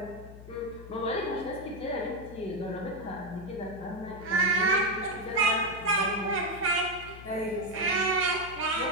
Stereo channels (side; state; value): left; noise; hum, 15 dB below the sound